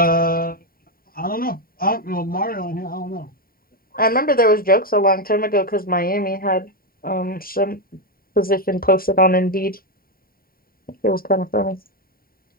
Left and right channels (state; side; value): late; right; 0.43 ms